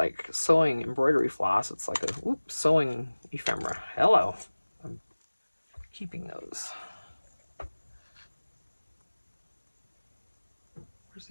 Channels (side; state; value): both; inverted; correlation -1.00